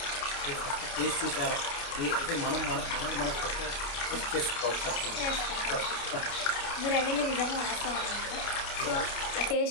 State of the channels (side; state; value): right; late; 29 ms